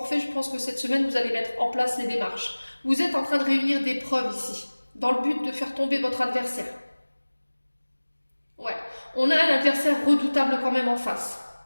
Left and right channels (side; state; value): both; inverted; correlation -1.00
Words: fait, je pense que cette semaine, vous allez mettre en place les démarches. Vous êtes en train de réunir des preuves ici, dans le but de faire tomber votre adversaire. Ouais, on a un adversaire redoutable quand même en face.